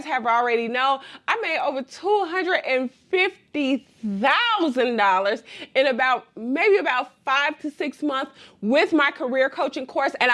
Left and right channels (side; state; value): both; identical; correlation 1.00